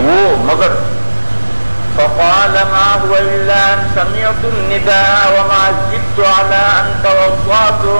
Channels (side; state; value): both; inverted; correlation -1.00